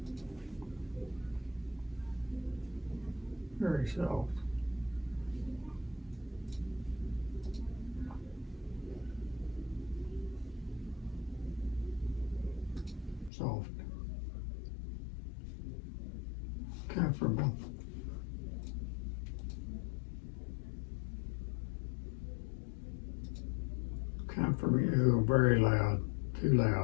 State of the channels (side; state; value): right; drops out; at 13.3 s